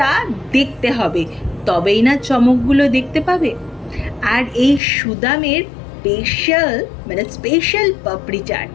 দেখতে হবে, তবেই না চমকগুলো দেখতে পাবে। আর এই সুদামের স্পেশাল পাপড়ি চাট,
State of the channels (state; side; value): drops out; right; at 4.8 s